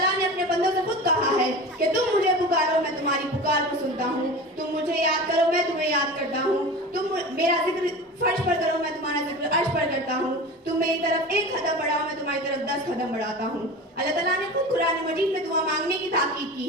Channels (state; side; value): normal; both; correlation 0.32